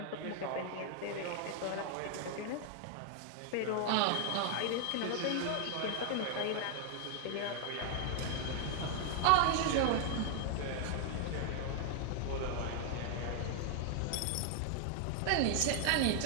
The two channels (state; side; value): different; both; correlation 0.00